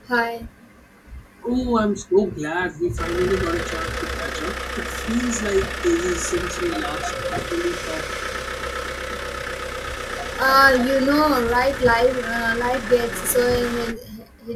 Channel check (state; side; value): identical; both; correlation 1.00